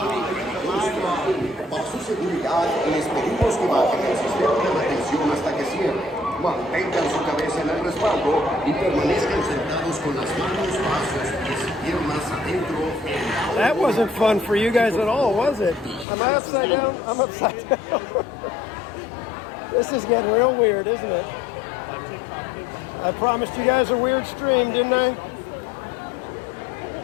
Para su seguridad, les pedimos que bajen el sistema de mantención hasta que cierre. Mantengan su cabeza en el respaldo y permanezcan sentados con las manos bajo sus pies y piernas adentro. That wasn't fun for you guys at all, was it? Am I upside down? I'm upside down. This is getting real weird, isn't it? I promised you guys a weird stream, didn't I?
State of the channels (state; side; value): drops out; right; at 16.1 s